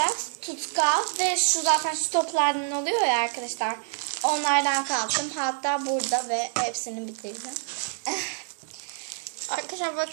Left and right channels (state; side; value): silent; left; 60 dB below the other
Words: tutkal ve şu zaten şu toplardan oluyor ya arkadaşlar. Onlardan kalktım. Hatta burada ve hepsini bitireceğim. Arkadaşlar